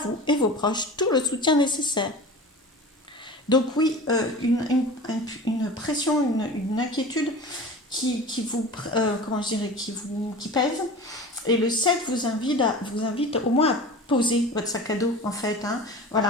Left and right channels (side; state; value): both; normal; correlation 0.35